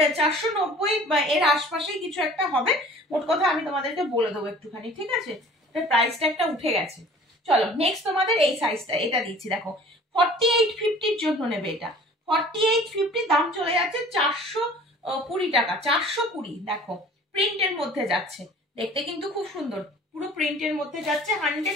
বা এর আশপাশেই কিছু একটা হবে, মোট কথা আমি তোমাদেরকে বলে দেবো একটুখানি, ঠিক আছে। এটার প্রাইসটা একটা উঠে গেছে। চলো নেক্সট তোমাদের এই সাইজটা, এটা দিচ্ছি দেখো, 4850-র জন্য নেবে এটা, 4850, দাম চলে যাচ্ছে 420 টাকা, 420, দেখো প্রিন্টের মধ্যে যাচ্ছে, দেখতে কিন্তু খুব সুন্দর, পুরো প্রিন্টের মধ্যে যাচ্ছে,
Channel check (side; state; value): both; normal; correlation 0.47